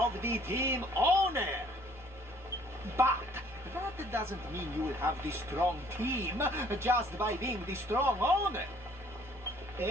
the team owner. But that doesn't mean you will have the strong team just by being the strong owner.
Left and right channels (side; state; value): both; normal; correlation 0.59